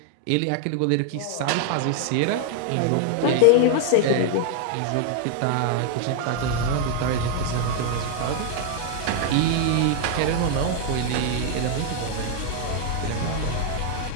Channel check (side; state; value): both; different; correlation 0.00